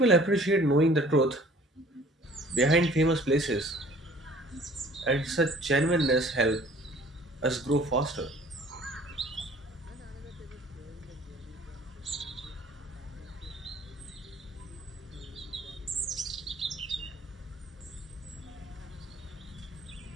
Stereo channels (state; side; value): normal; both; correlation 0.52